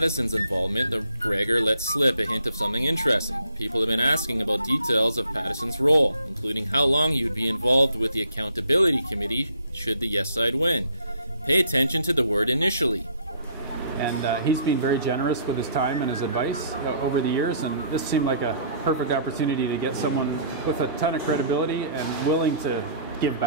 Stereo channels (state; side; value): inverted; both; correlation -0.61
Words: involvement that Gregor let slip a hint of something interesting. People have been asking about details of Pattison's role, including how long he would be involved with the Accountability Committee should the yes side win. Pay attention to the word initially. And he's been very generous with his time and his advice over the years, and this seemed like a perfect opportunity to get someone with a ton of credibility and willing to give